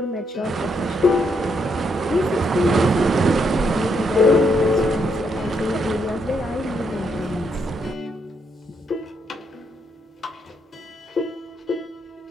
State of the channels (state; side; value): normal; both; correlation 0.76